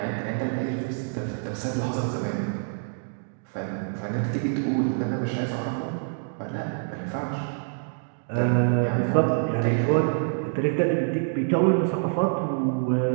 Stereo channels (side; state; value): left; silent; 61 dB below the other